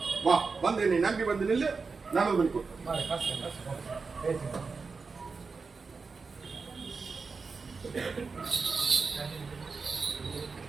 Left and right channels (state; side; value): quieter; left; 4.6 dB